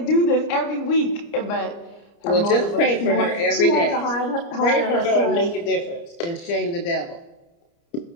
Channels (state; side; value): late; right; 29 ms